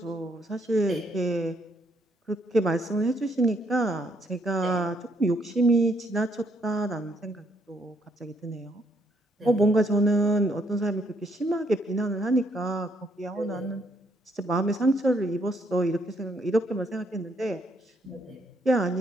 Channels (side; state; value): both; normal; correlation 0.72